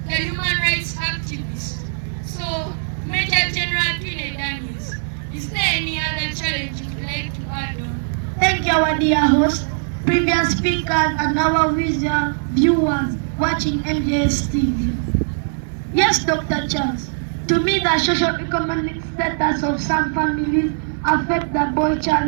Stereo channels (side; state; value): left; silent; digital silence